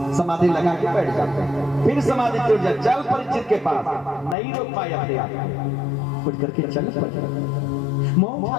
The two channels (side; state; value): right; drops out; at 4.4 s